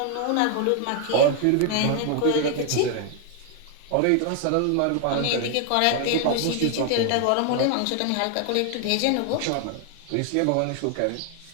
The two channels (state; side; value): different; both; correlation 0.00